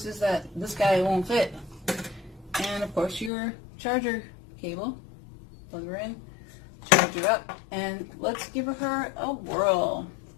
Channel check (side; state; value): right; drops out; at 3.3 s